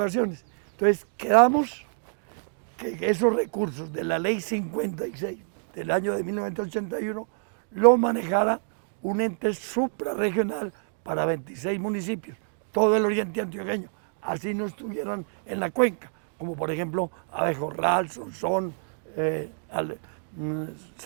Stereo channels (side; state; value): left; silent; digital silence